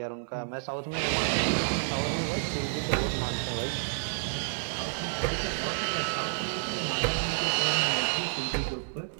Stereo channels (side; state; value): left; silent; 58 dB below the other